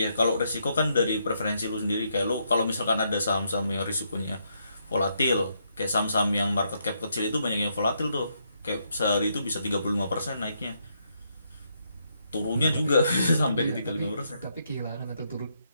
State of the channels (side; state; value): both; inverted; correlation -0.76